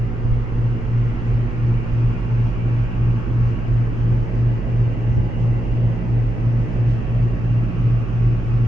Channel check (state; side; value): noise; right; hum, 6 dB below the sound